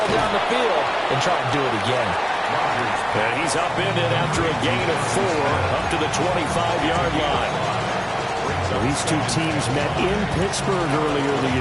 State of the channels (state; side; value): identical; both; correlation 1.00